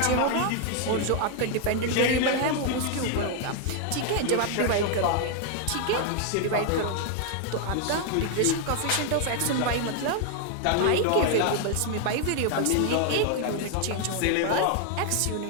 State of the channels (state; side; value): different; both; correlation 0.00